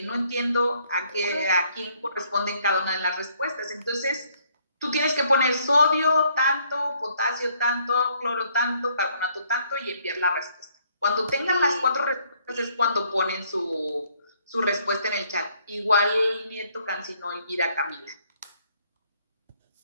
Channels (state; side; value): inverted; both; correlation -0.66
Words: no entiendo a quién corresponden cada una de las respuestas. Entonces, tú tienes que poner sodio tanto, potasio tanto, cloro tanto, carbonato tanto y enviar la respuesta. Cuando tengan las 4 respuestas es cuando ponen su respuesta en el chat. Igual Nieto Cancino, Elvira, Camila.